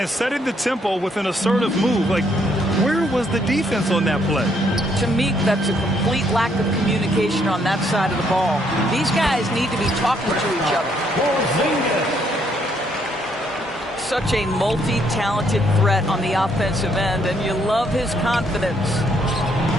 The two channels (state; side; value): normal; both; correlation 0.70